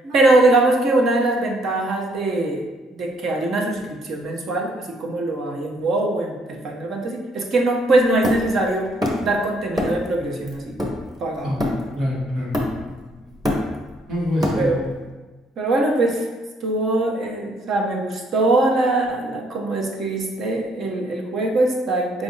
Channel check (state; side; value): normal; both; correlation 0.68